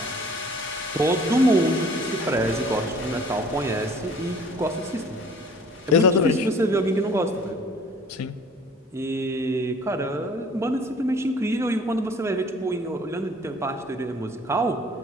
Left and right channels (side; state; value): both; normal; correlation 0.52